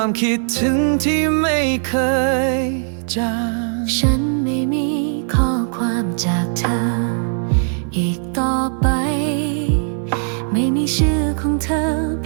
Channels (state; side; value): silent; left; 67 dB below the other